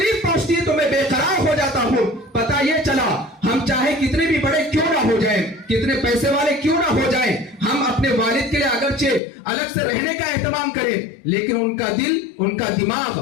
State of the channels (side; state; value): right; drops out; at 9.2 s